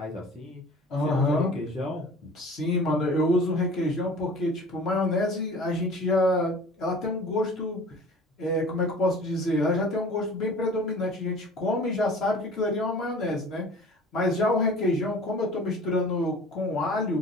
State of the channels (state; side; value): normal; both; correlation 0.43